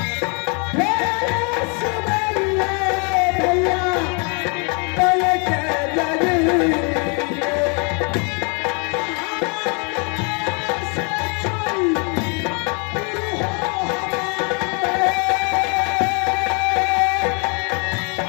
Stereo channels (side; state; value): right; quieter; 35.6 dB